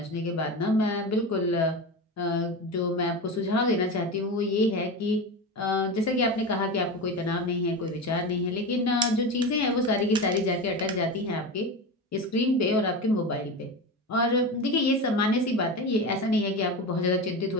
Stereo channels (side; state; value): both; normal; correlation 0.23